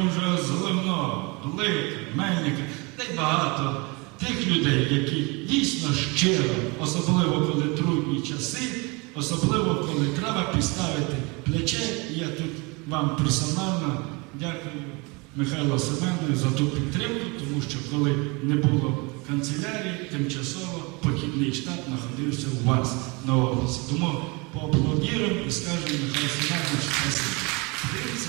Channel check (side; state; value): left; quieter; 28.1 dB